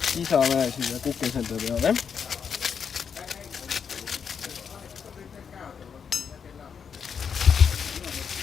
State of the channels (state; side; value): quieter; right; 6.8 dB